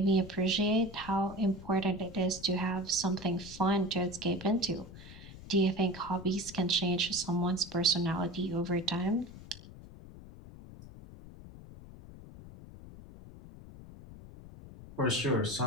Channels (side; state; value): left; noise; rumble, 16 dB below the sound